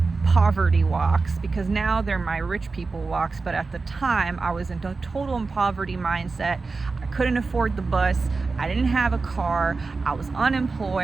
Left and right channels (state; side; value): quieter; left; 4.1 dB